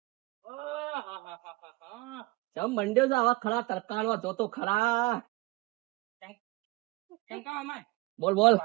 જમ મંડ્યો છે આવા ખરા તરકાણો જોતો ખરા. બોલ બોલ.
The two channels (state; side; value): quieter; left; 22.6 dB